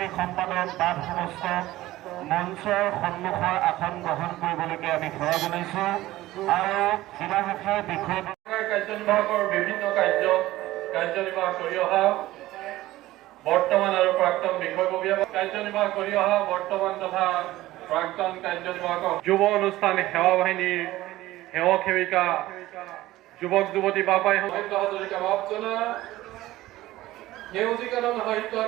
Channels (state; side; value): quieter; left; 16.5 dB